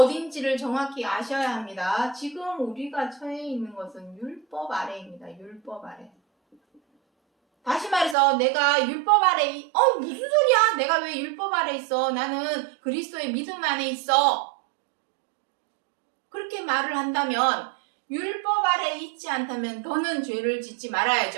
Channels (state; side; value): drops out; left; at 8.2 s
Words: 정확히 아셔야 합니다. 지금 우리가 처해 있는 것은 율법 아래입니다. 율법 아래. 다시 말해서 내가 율법 아래 무슨 소리야? 내가 왜 율법 아래 있어? 나는 그리스도의 믿음 안에 있어. 그렇게 말을 한다면 율법 아래 있지 않다면 더는 죄를 짓지